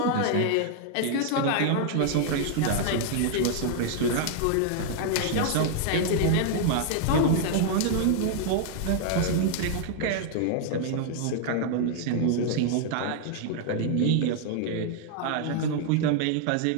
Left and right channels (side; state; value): both; different; correlation 0.00